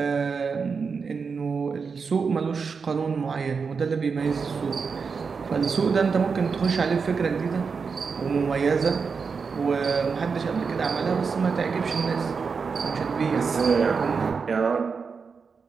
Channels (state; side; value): quieter; left; 5.4 dB